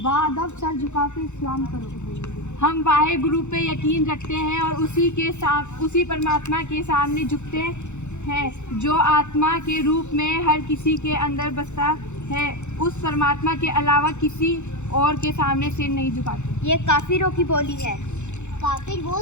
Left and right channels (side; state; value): right; late; 0.83 ms